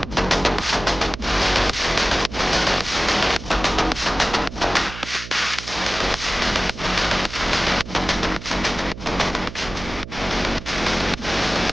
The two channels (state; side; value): noise; right; hum, 12 dB below the sound